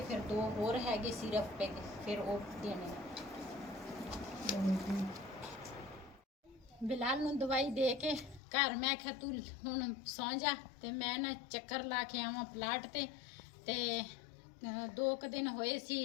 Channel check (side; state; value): right; drops out; at 8.4 s